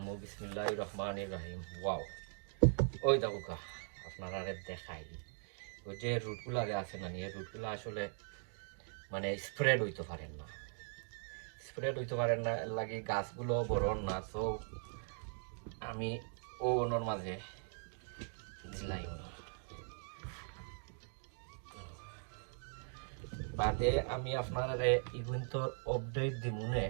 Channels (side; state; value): left; silent; 51 dB below the other